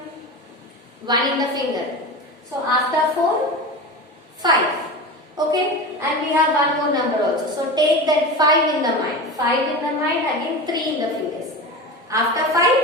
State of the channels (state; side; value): normal; both; correlation 0.27